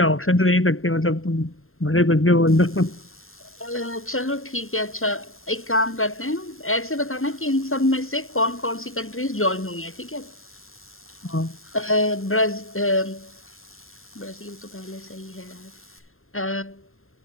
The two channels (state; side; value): late; right; 0.61 ms